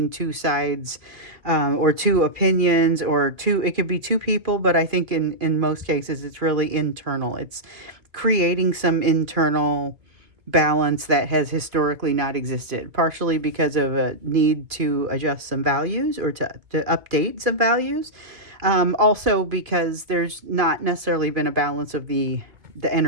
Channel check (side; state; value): left; late; 2.5 ms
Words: two sides, or two opinions, or two, it could be two people, but I think in most cases it's really internal. It's creating some internal balance that has historically not existed, partially because of a need to adjust some values or to update some values. Also because there's not necessarily been a balance of the